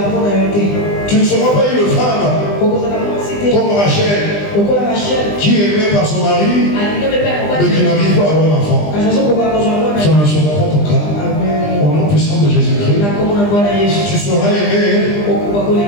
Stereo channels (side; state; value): right; late; 20 ms